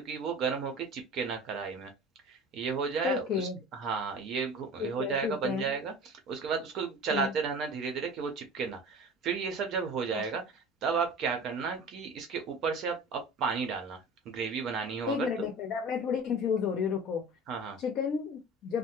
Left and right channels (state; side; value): normal; both; correlation 0.38